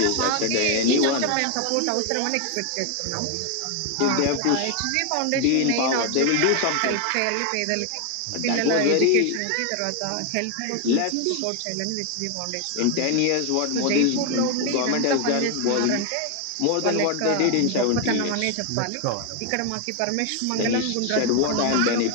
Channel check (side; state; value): both; different; correlation 0.01